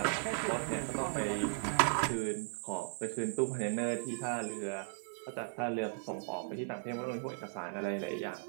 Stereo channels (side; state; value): left; silent; 53 dB below the other